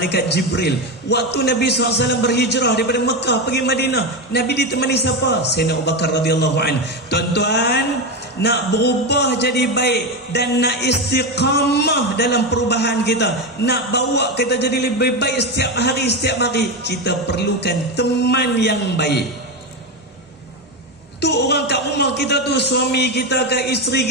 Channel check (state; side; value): normal; both; correlation 0.14